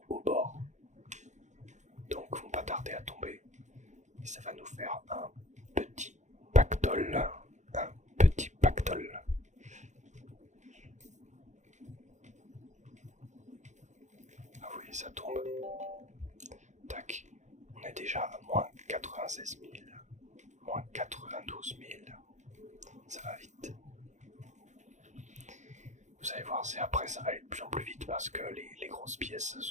au bord. Donc vont pas tarder à tomber. Et ça va nous faire un petit pactole. Un petit pactole. Ah oui, ça tombe. Tac. On est déjà à moins 96 000. Moins 92 000. Ça va vite. Vous allez voir, c'est après ça va aller de plus en plus vite parce que les grosses pièces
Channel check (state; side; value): late; left; 0.34 ms